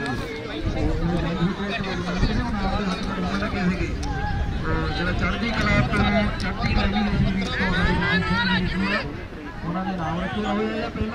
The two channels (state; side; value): identical; both; correlation 1.00